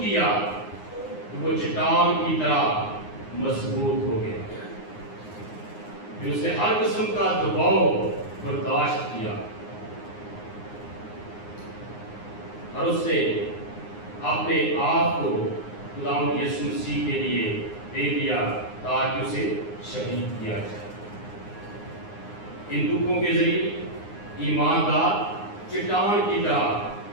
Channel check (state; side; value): late; right; 9.6 ms